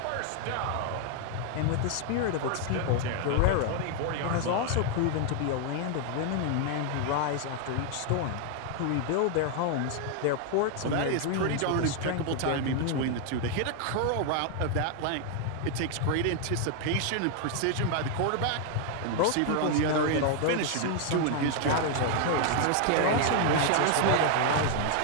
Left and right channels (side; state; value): both; different; correlation 0.00